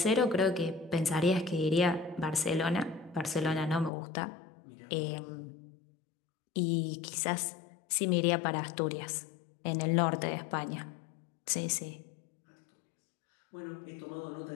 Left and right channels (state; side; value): drops out; right; at 3.9 s